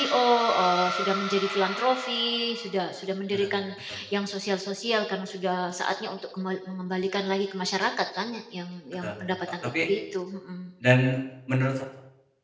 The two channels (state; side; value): identical; both; correlation 1.00